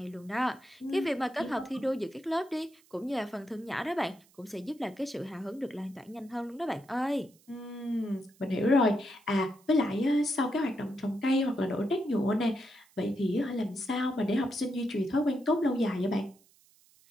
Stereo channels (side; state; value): right; noise; hiss, 30 dB below the sound